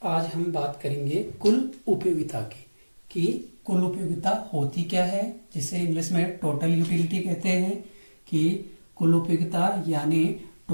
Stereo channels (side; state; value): both; inverted; correlation -1.00